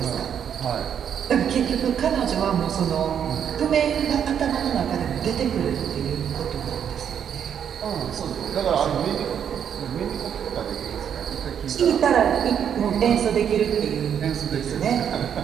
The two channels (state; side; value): quieter; left; 8.5 dB